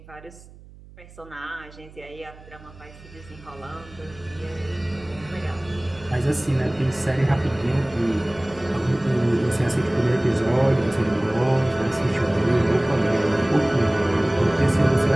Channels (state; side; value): noise; right; hum, 21 dB below the sound